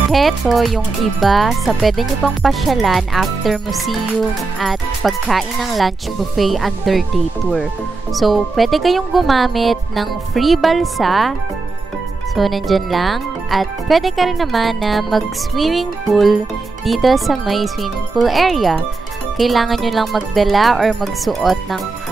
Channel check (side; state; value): left; quieter; 3.7 dB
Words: Heto yung iba sa pwede nyo pang pasyalan after museum at pagkain ng lunch buffet under day tour. So, pwede kayong gumamit ng free balsa. So, nandyan lang. At pwede ka rin naman na mag-swimming pool dito sa may swimming pool area. Kailangan nyo lang magdala or magsuot ng